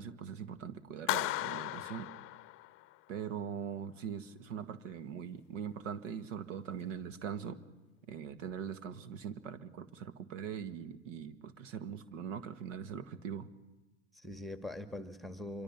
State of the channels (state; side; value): normal; both; correlation 0.13